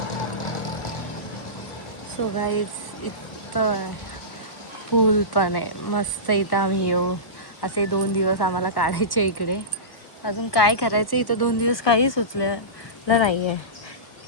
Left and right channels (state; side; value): late; right; 1.2 ms